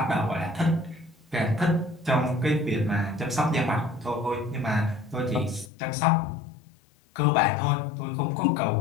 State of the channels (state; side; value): drops out; right; at 5.7 s